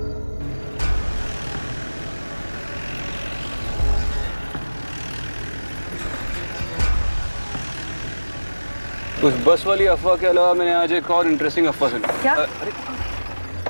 उस बस वाली अफवाह के अलावा मैंने आज एक और इंटरेस्टिंग अफवाह सुनी। क्या? अरे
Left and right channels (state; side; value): inverted; both; correlation -1.00